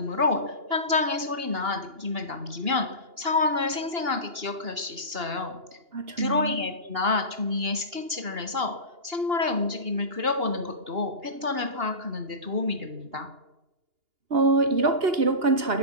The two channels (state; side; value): late; left; 2.8 ms